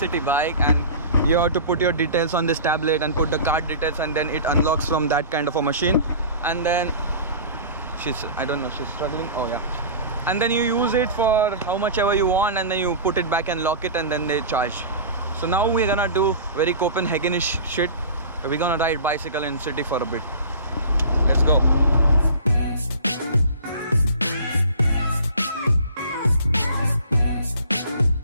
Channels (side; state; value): both; inverted; correlation -0.40